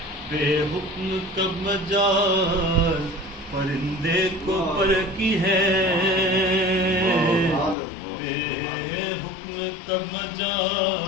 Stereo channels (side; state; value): right; drops out; at 7.8 s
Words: बेहुक्म कब मजाल परिंदे को पर की है, बेहुक्म कब